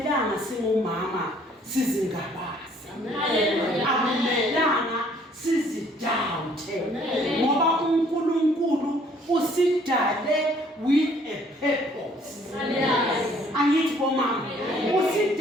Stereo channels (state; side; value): normal; both; correlation 0.60